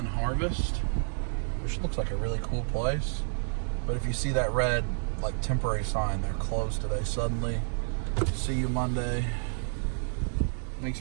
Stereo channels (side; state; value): left; silent; digital silence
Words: Harvest, which looks like a really cool place. But if you see that red, like, temporary sign, they're closed today suddenly. See you Monday.